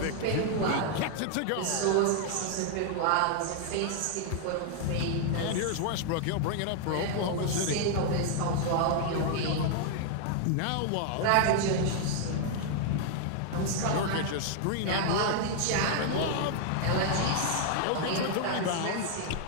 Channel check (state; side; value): different; both; correlation 0.00